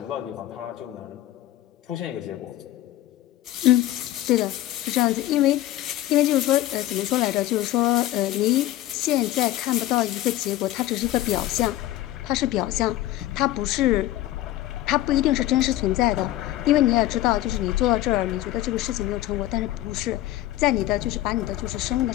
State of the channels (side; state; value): right; quieter; 14.6 dB